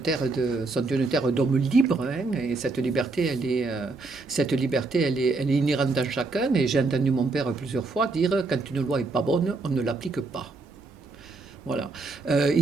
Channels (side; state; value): left; quieter; 3.7 dB